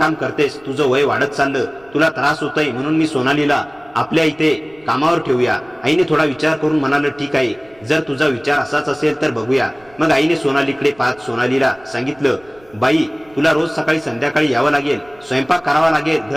करतेस, तुझं वय वाढत चाललं, तुला त्रास होतोय, म्हणून मी सोनालीला आपल्या इथे कामावर ठेवूया। आईने थोडा विचार करून म्हणालं, ठीक आहे, जर तुझा विचार असाच असेल तर बघूया। मग आईने सोनालीकडे पाहत सोनालीला सांगितलं, बाई, तुला रोज सकाळी संध्याकाळी यावं लागेल, स्वयंपाक करावा लागेल,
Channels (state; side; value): noise; right; rumble, 29 dB below the sound